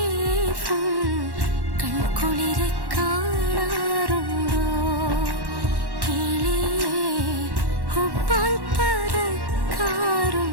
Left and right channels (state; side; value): late; left; 1.1 ms